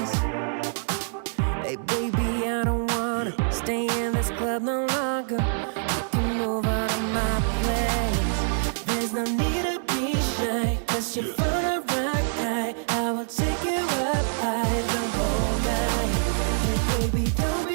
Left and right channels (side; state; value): left; silent; 61 dB below the other